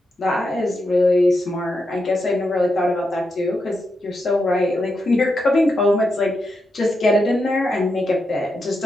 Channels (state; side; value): normal; both; correlation 0.85